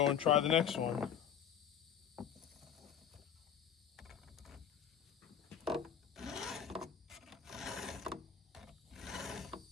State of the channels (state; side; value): quieter; right; 8.4 dB